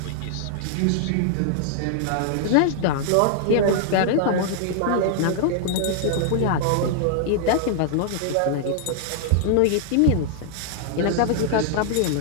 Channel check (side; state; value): both; different; correlation -0.01